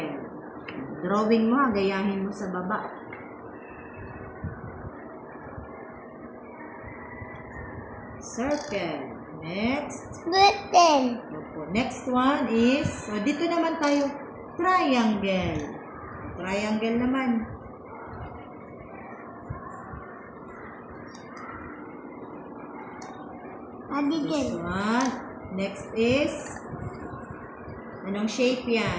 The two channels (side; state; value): both; identical; correlation 1.00